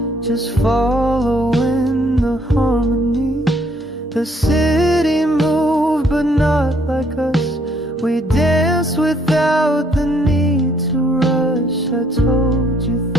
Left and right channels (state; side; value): normal; both; correlation 0.66